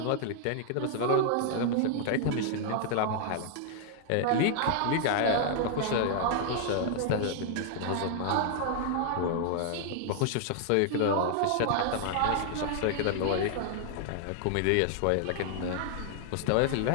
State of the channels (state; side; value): different; both; correlation 0.00